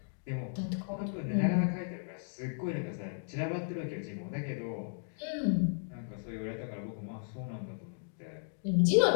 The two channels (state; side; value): silent; right; digital silence